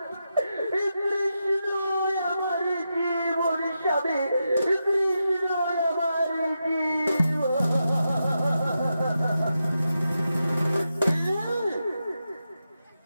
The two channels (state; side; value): inverted; both; correlation -0.87